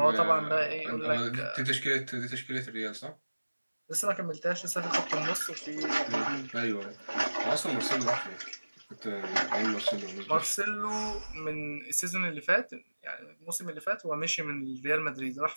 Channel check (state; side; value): inverted; both; correlation -1.00